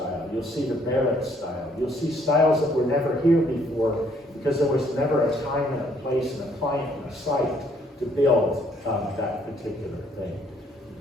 You'll see the Barrett style. You'll see styles that were never here before because there was never a time and a place and a client and a site to build that particular thing.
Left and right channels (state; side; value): normal; both; correlation 0.65